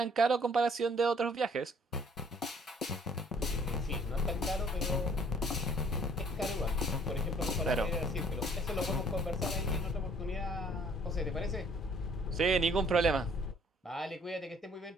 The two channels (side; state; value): both; normal; correlation 0.59